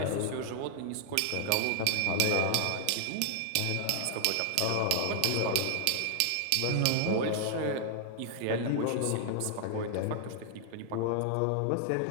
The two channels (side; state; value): both; different; correlation 0.00